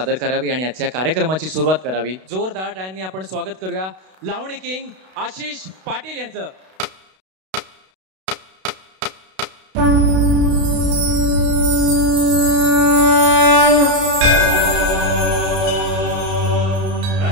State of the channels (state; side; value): late; left; 32 ms